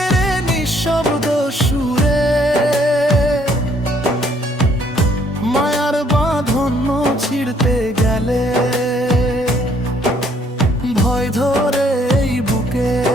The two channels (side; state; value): both; normal; correlation 0.65